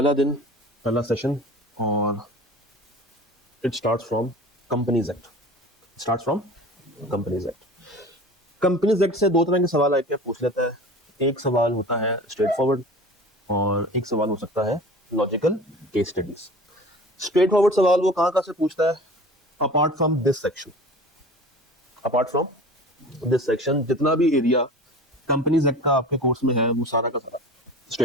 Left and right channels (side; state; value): both; normal; correlation 0.39